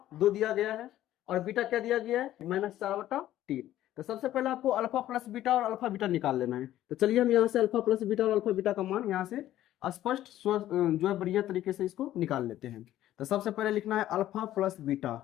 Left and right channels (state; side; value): quieter; right; 13.3 dB